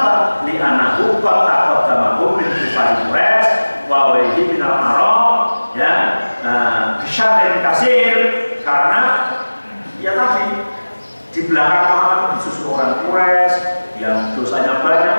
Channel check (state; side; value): inverted; both; correlation -1.00